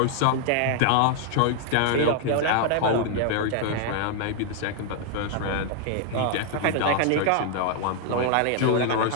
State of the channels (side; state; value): both; different; correlation 0.00